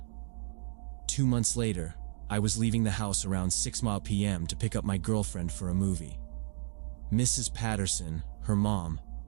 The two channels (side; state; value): left; silent; digital silence